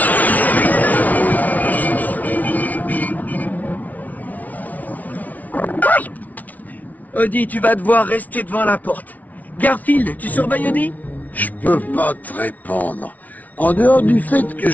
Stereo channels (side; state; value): right; late; 0.074 ms